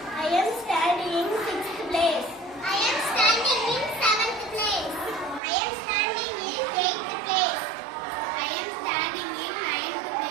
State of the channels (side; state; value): left; drops out; at 5.4 s